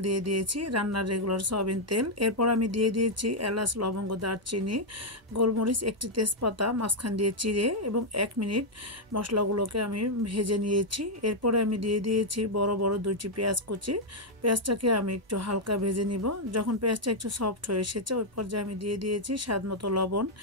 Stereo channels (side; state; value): both; normal; correlation -0.01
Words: দিয়ে দিয়েছি, রান্নার রেগুলার সয়াবিন তেল। এরপর আমি দিয়ে দিয়েছি এলাচ, লবঙ্গ, দারচিনি, গোলমরিচ, একটি তেজপাতা মাঝখান দিয়ে চিড়ে এবং 1 মিনিট মশলাগুলোকে আমি ভেজে নিয়েছি। এরপরে আমি দিয়ে দিয়েছি বড় বড় 2টি পেঁয়াজ কুচি। পেঁয়াজটাকে আমি একটু হালকা ভেজে নিব। যখন পেঁয়াজটা একটু সফট হয়ে এসেছে ওই পর্যায়ে আমি দিয়ে দিয়েছি স্বাদ মতো লবণ,